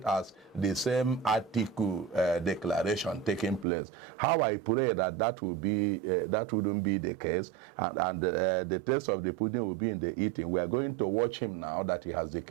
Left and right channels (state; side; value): drops out; left; at 3.7 s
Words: as the same Atiku declaration taking place. How I pray that will be that wouldn't be the case, and the taste of the pudding will be in the eating. We are going to watch him now that he has